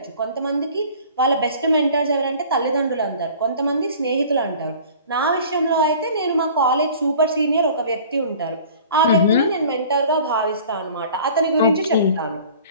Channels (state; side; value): inverted; both; correlation -0.46